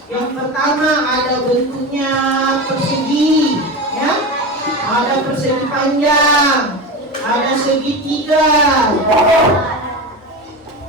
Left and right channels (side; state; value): both; normal; correlation 0.23